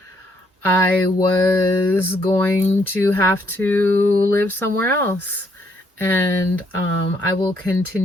I was going to have to live somewhere else. And I will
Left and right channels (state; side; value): normal; both; correlation 0.71